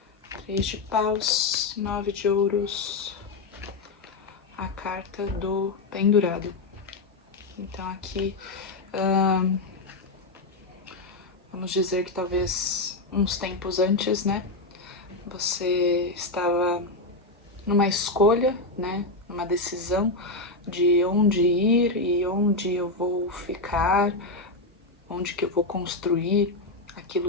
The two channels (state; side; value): quieter; right; 3.2 dB